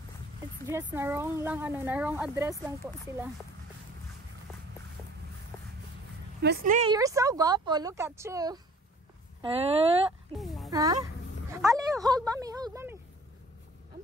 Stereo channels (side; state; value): both; normal; correlation 0.51